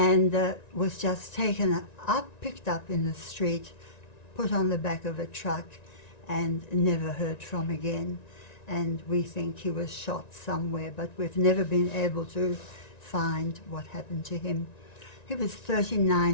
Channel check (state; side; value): late; right; 1.9 ms